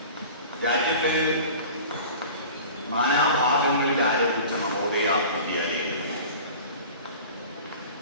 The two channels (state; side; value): inverted; both; correlation -0.40